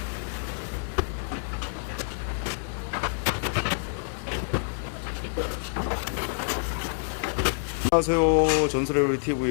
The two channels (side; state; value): right; silent; digital silence